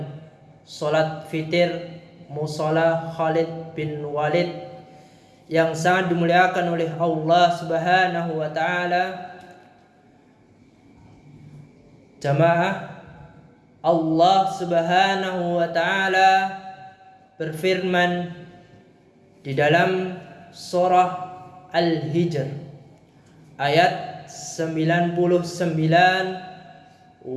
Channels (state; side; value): identical; both; correlation 1.00